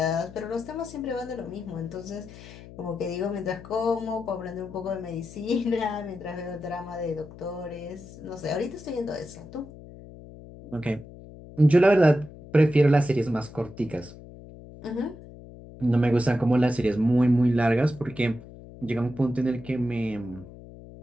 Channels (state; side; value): noise; left; hum, 17 dB below the sound